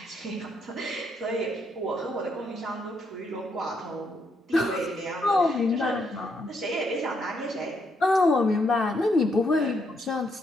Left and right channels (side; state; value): both; normal; correlation 0.76